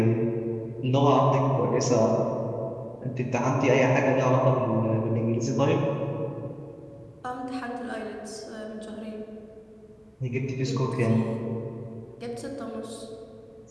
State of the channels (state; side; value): identical; both; correlation 1.00